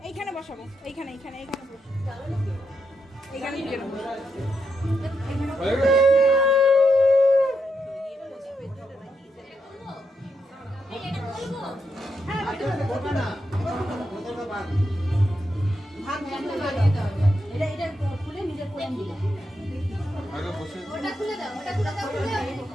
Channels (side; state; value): both; normal; correlation 0.82